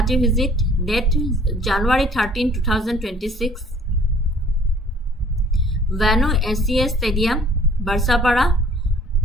visit date January 13, 2026 Venue SCA Stadium, Barsapara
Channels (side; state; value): both; normal; correlation 0.55